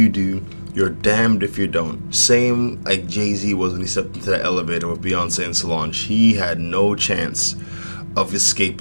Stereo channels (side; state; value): both; inverted; correlation -1.00